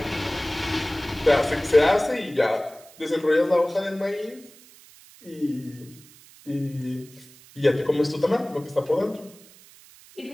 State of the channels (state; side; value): noise; right; hiss, 23 dB below the sound